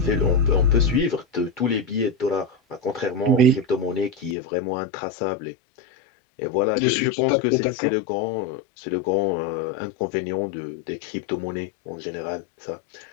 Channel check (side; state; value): right; drops out; at 4.4 s